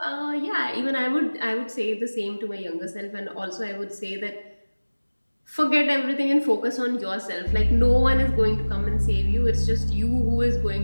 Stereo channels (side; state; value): both; inverted; correlation -1.00